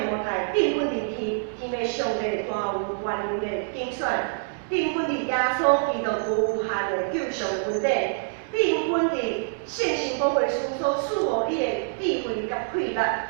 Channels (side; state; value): left; silent; digital silence